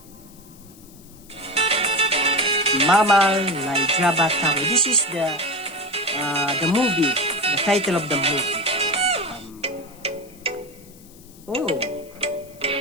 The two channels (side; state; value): left; noise; hiss, 24 dB below the sound